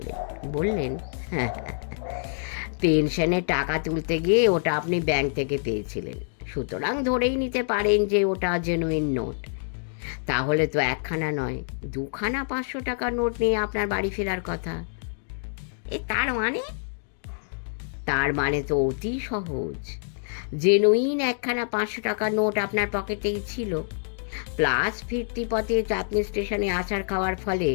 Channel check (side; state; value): right; silent; digital silence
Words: বললেন, পেনশনের টাকা তুলতে গিয়ে ওটা আপনি ব্যাংক থেকে পেয়েছিলেন, সুতরাং ধরেই নিতে পারেন যে ওটা জেনুইন নোট। তাহলে তো একখানা নয়, 2খানা 500 টাকার নোট নিয়ে আপনার বাড়ি ফেরার কথা। তার মানে তো অতি সহজ। জেনুইন একখানা 500 টাকার নোট আপনার পকেটেই ছিল, প্লাস ফিরতি পথে চাঁদনি স্টেশনে আসার খাওয়ার ফলে